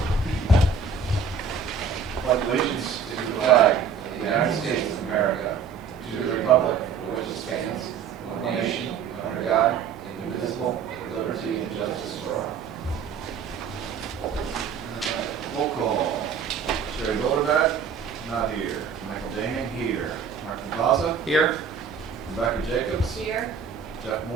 Pledge allegiance to the flag of the United States of America, to the republic for which it stands, one nation, under God, indivisible, with liberty and justice for all. Roll call. Sherry Boulderback, not here. Michael Daming, here. Martin Vaza, Here. Rebecca Jacobs, Here. Jeff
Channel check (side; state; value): left; quieter; 6.4 dB